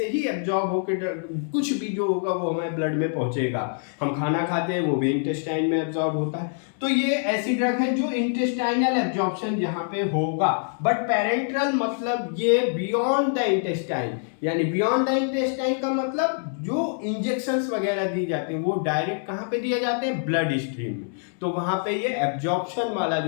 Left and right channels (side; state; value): right; silent; digital silence